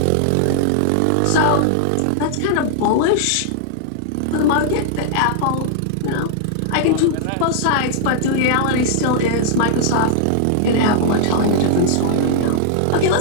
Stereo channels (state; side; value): different; both; correlation -0.01